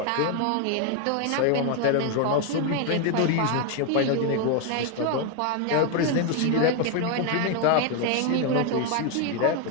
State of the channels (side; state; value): both; different; correlation 0.01